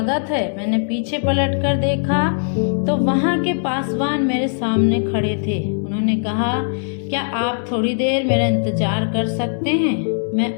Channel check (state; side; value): silent; right; 66 dB below the other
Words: है। मैंने पीछे पलट कर देखा तो वहाँ के पासवान मेरे सामने खड़े थे। उन्होंने कहा, क्या आप थोड़ी देर मेरा इंतजार कर सकते हैं? मैं